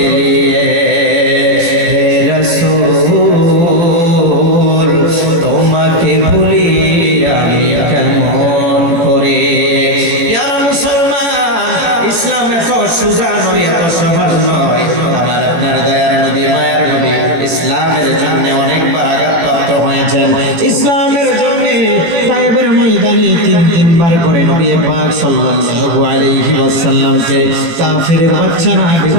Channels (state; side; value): late; left; 18 ms